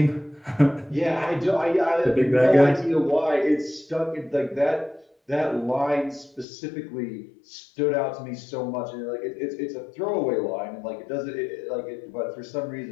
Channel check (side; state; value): right; drops out; at 6.5 s